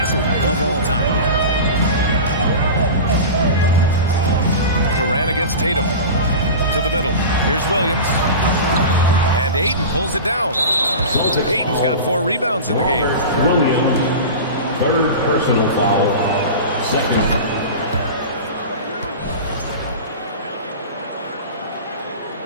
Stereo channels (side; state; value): both; inverted; correlation -0.30